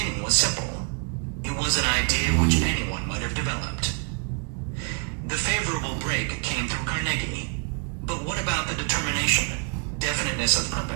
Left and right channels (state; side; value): quieter; left; 36.6 dB